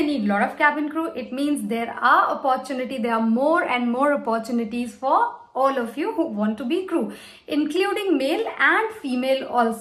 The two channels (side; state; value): both; identical; correlation 1.00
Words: need lot of cabin crew, it means there are more and more opportunities for all of you who want to be crew, including male and female